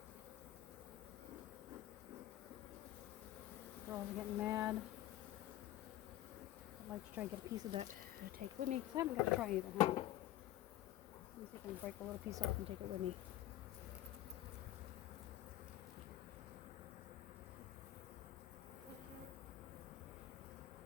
Girls are getting mad. I'd like to try and get a piece of that to take with me because I haven't got to try it at home. Let me see if I can break a little piece off and take it with me.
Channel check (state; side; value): quieter; right; 14.0 dB